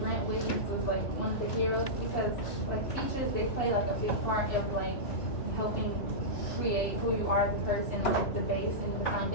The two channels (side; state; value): right; late; 2.9 ms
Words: Grant Wiggins was like one of the heroes because like teachers, they play like a big part of like helping create who you are as a person, like the base and the